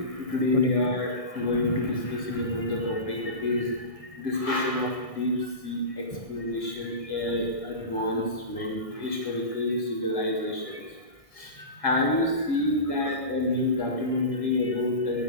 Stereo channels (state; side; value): late; right; 1.8 ms